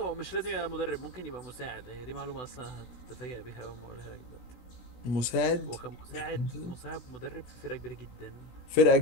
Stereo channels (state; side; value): late; right; 17 ms